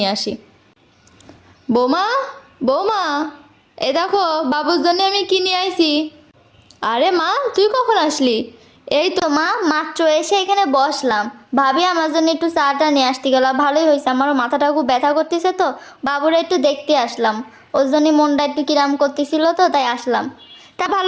আসি। বৌমা, বৌমা, এ দেখো বাবুর জন্য আমি কি নিয়ে আইছি। আরে মা, তুই কখন আসলি? এই তো মা, মাত্র এসে এখানে বসলাম। ভাবি আমার জন্য একটু চাটা নিয়ে আসতে গেল, ভালোই হয়েছে। আমারও মাথাটা খুব ব্যথা করতেছে, তো বাবুরা একটু দেখতে আসলাম। ওর জন্য মনটা একটু কিরাম করতেছিল, তো তাই আসলাম। তা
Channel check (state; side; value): identical; both; correlation 1.00